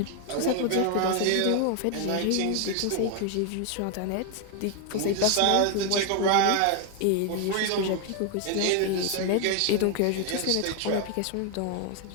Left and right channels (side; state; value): both; different; correlation 0.00